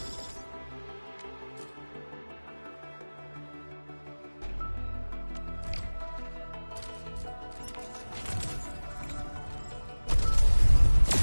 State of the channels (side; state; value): both; inverted; correlation -1.00